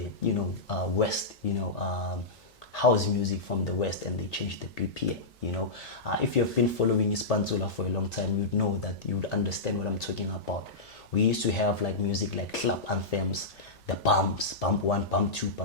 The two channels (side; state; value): right; quieter; 3.2 dB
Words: you know, West, you know, house music from the West, and they changed the BPM. You know, if you have been following Pantsula for a long time, you'd know that, you'd understand what I'm talking about. We used to have like music like club anthems, the bumps, bump one, bump two,